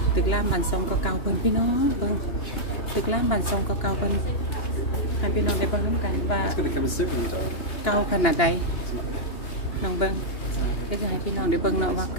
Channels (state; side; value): late; right; 2.9 ms